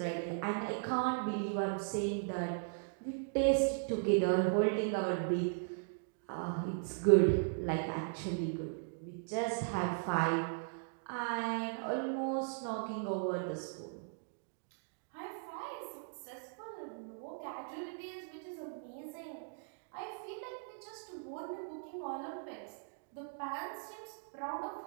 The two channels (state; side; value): silent; left; digital silence